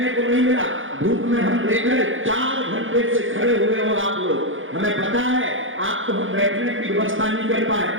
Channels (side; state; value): left; late; 0.58 ms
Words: को नहीं मिला, धूप में हम देख रहे 4 घंटे से खड़े हुए हो आप लोग। हमें पता है आपको हम बैठने की व्यवस्था नहीं कर पाए,